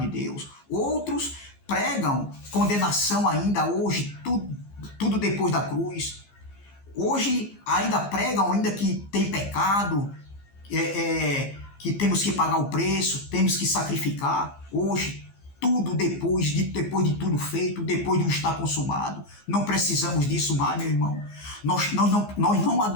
de Deus. Outros pregam condenação ainda hoje, tudo depois da cruz. Hoje ainda pregam ainda que tem pecado, que temos que pagar o preço, temos que sacrificar. Hoje, tudo depois de tudo feito, depois de estar consumado. Não precisamos disso mais, meu irmão. Nós não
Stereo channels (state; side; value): late; right; 15 ms